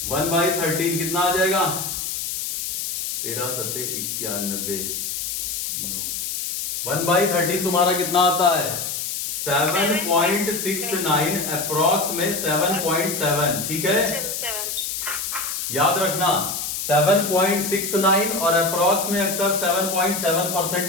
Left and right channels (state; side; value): noise; left; hiss, 4 dB below the sound